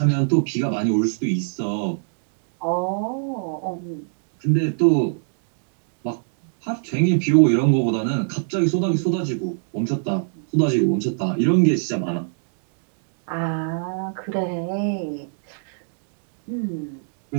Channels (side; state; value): left; silent; digital silence